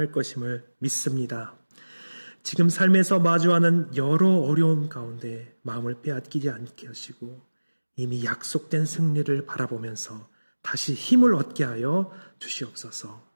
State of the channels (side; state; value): both; inverted; correlation -1.00